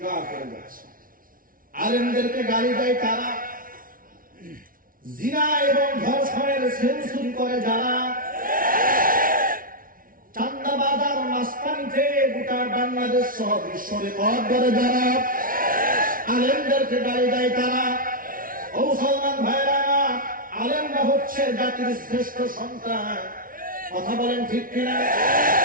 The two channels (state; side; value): late; left; 0.41 ms